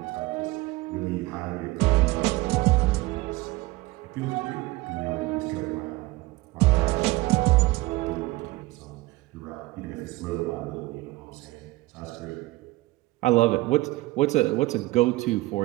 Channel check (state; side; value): quieter; left; 20.2 dB